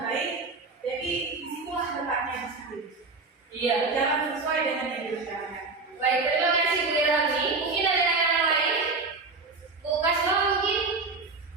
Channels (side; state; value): left; quieter; 3.9 dB